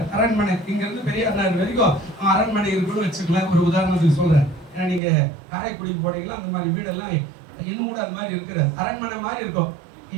அரண்மனை இங்க இருந்து பெரிய அண்ணார் வரைக்கும் அரண்மனை இருக்குன்னு வச்சுக்கலாம். ஒரு உதாரணத்துக்கு சொல்றேன். ஏன்னா நீங்க காரைக்குடிக்கு போனீங்கன்னா அந்த மாதிரி வீடெல்லாம் இன்னும் கூட அது மாதிரி இருக்கிற அரண்மனை மாதிரி இருக்கும்.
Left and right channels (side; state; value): left; drops out; at 5.0 s